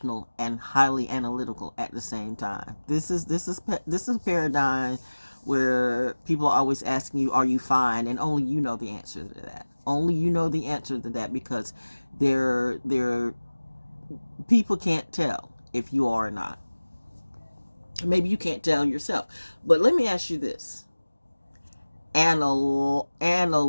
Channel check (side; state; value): both; inverted; correlation -1.00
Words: and highly analytical at the same time. This is a paradigm where people are always asking you, "Are you fine?" And only you know the answer to that. Only you know the answer to that, because they're people can't tell if you are or not. Maybe you can't tell yourself. But let me ask you this.